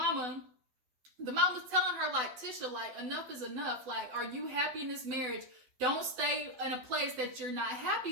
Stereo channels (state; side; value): late; left; 12 ms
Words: The mama's telling her, like, Tisha, like, enough is enough. Like, are you happy in this marriage? Don't stay in a place that you're not